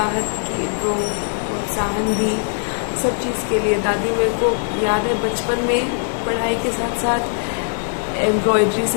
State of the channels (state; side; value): silent; right; 63 dB below the other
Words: दी सब चीज़ के लिए। दादी मेरे को याद है बचपन में पढ़ाई के साथ साथ एम्ब्रॉयडरी